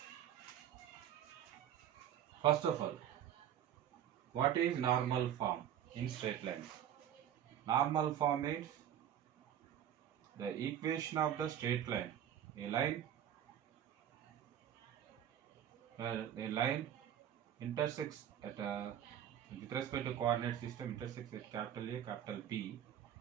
First of all, what is normal form in straight lines? Normal form is the equation of the straight line. A line intersects at with respect to coordinate system intersects at capital A, capital B.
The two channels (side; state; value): left; quieter; 10.2 dB